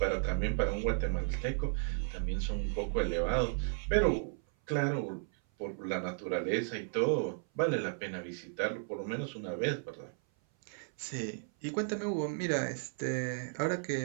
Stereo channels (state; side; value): silent; left; 55 dB below the other